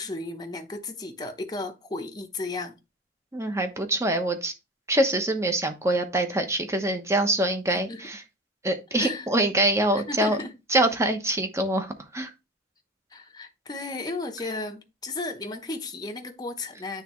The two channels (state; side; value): normal; both; correlation 0.32